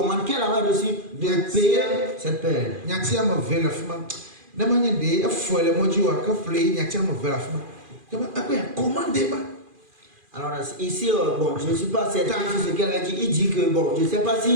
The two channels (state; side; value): late; left; 2.4 ms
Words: qu'elle avait reçue de payer cette paix. Nyatia me veut la femme. N'importe de, il faut le mois du jour que fleur, nyatia me veut la femme. Après, commandez-moi. Alors ici, bon, je ne suis pas certain de ce qu'elle a dit. Il dit que, bon, je ne sais pas